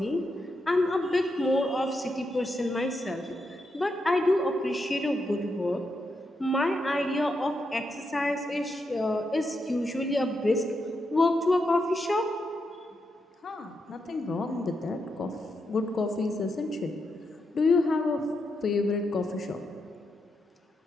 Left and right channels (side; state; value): both; normal; correlation 0.84